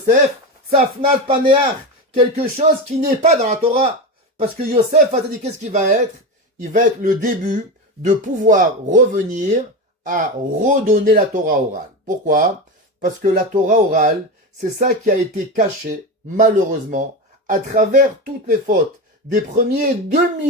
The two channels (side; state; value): both; normal; correlation 0.20